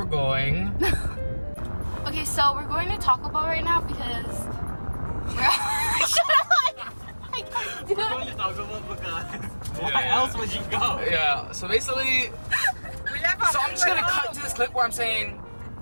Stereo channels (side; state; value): both; inverted; correlation -1.00